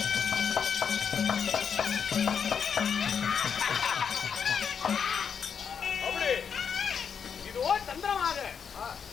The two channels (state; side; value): quieter; right; 7.0 dB